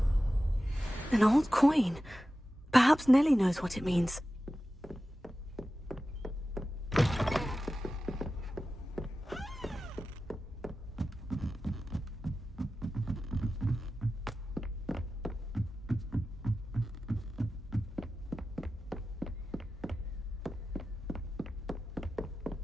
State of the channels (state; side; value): normal; both; correlation 0.94